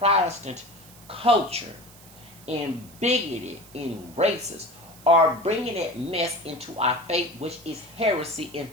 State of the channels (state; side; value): noise; right; hiss, 22 dB below the sound